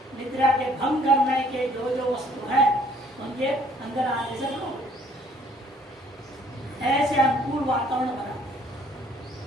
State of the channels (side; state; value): both; normal; correlation 0.60